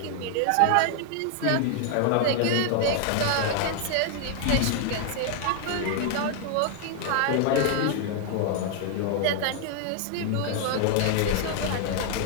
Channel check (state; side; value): different; both; correlation 0.00